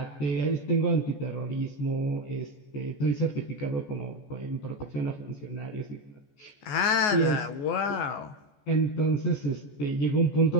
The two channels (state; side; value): late; right; 14 ms